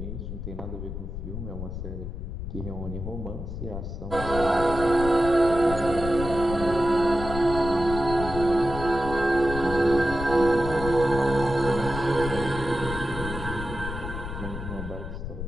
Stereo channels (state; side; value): noise; left; rumble, 7 dB below the sound